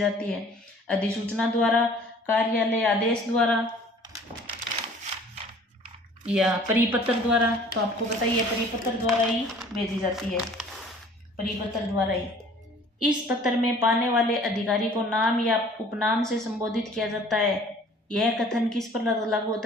है? अधिसूचना द्वारा, कार्यालय आदेश द्वारा या परिपत्र द्वारा? तो आपको बताइए परिपत्र द्वारा ही भेजी जाती है, परिपत्र द्वारा ही। इस पत्र में पाने वाले अधिकारी को नाम या उपनाम से संबोधित किया जाता है। यह कथन किस पर लागू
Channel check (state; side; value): normal; both; correlation 0.51